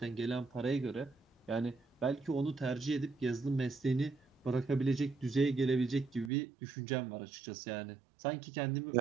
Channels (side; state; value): left; drops out; at 6.3 s